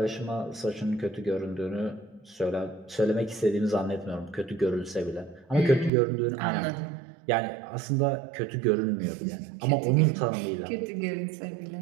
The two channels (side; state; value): left; drops out; at 5.9 s